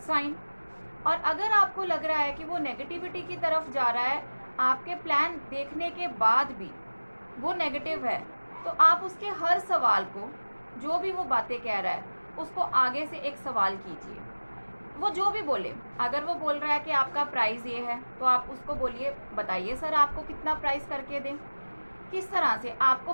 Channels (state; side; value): inverted; both; correlation -1.00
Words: साइन। और अगर आपको लग रहा है कि वो नेगेटिविटी की तरफ जा रहा है, आपके प्लान देखने के बाद भी वो नेगेटिव है, तो आप उसके हर सवाल को, जो भी वो बातें कह रहा है, उसको आगे से एक सवाल कीजिए। वो जो भी बोले, अगर वो बोल रहा है कि आपका प्राइस ये है तो आप उसको बोलिए, बताइए सर आपको कितना प्राइस करके दें। किस तरह से आपको